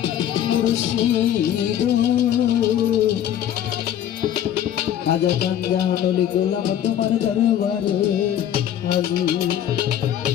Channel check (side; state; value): right; quieter; 10.6 dB